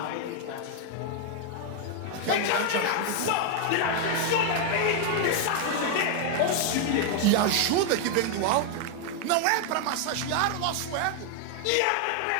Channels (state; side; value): different; both; correlation 0.01